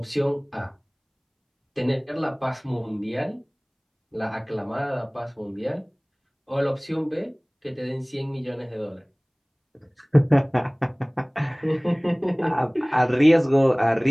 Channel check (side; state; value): both; identical; correlation 1.00